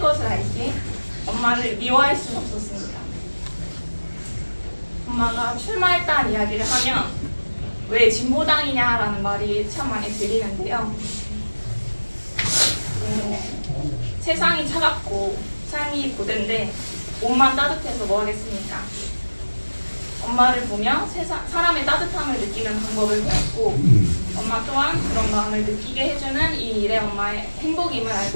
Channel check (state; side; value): inverted; both; correlation -1.00